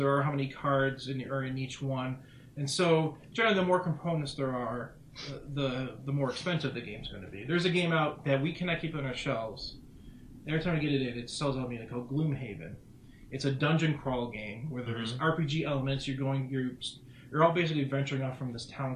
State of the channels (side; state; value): both; identical; correlation 1.00